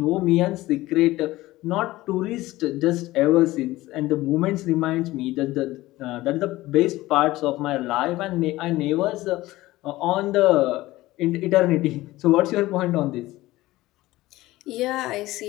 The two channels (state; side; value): quieter; right; 17.8 dB